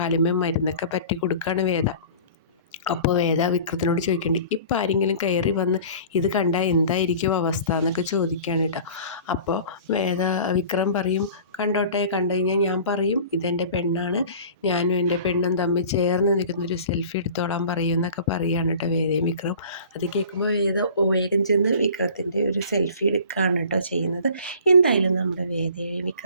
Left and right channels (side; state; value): both; inverted; correlation -0.43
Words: മരുന്നൊക്കെ പറ്റി കൊടുക്കുകയാണ് വേദ. അപ്പോൾ വേദ വിക്രത്തിനോട് ചോദിക്കേണ്ടി, ഇപ്പം ആരെങ്കിലും കയറി വന്ന് ഇത് കണ്ടാൽ എന്തായിരിക്കും അവസ്ഥ എന്നൊക്കെ ചോദിക്കുകയാണ് കേട്ടോ. അപ്പോൾ വിക്രം പറയും, കണ്ടോട്ടെ, കണ്ടു കഴിഞ്ഞാൽ ഞാൻ പറയും ഇതെൻ്റെ പെണ്ണാണ്, ഞാനും എൻ്റെ പെണ്ണും തമ്മിൽ ചേർന്ന് നിൽക്കുന്നൊരു സെൽഫി എടുത്തോളാൻ പറയും എന്നൊക്കെ പറയുകയാണ് കേട്ടോ വേദയും വിക്രം. അത് കേൾക്കുമ്പോൾ വേഗം ചെന്ന് വിക്രത്തിൻ്റെ ഒരു സെൽഫി എടുക്കുകയാണ് കേട്ടോ ചെയ്യുന്നത്. എന്തായാലും നമ്മുടെ വേദയും